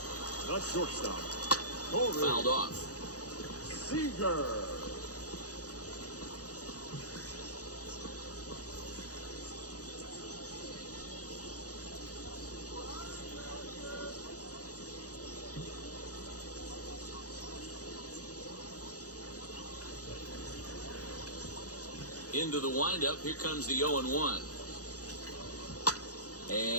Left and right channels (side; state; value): right; late; 0.67 ms